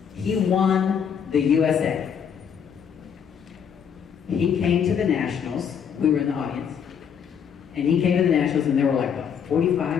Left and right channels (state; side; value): quieter; right; 7.6 dB